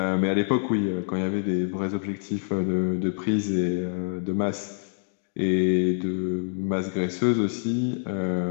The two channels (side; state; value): right; silent; digital silence